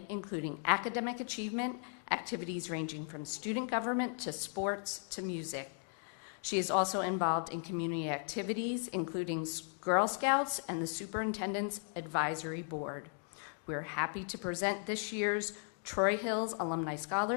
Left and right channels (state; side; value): silent; right; 53 dB below the other